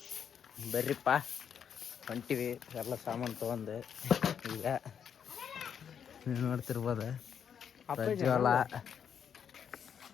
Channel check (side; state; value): right; quieter; 7.9 dB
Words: ಬರ್ರಿಪ್ಪ ಹೊಂಟಿವಿ ಎಲ್ಲ ಸಾಮಾನು ತೊಗೊಂಡು. ಈಗ ನೀವು ನೋಡ್ತಿರ್ಬೋದು ಪ್ರಜ್ವಲ